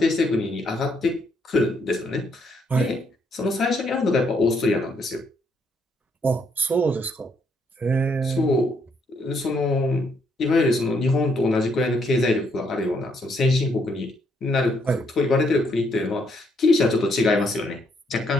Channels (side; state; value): both; normal; correlation 0.73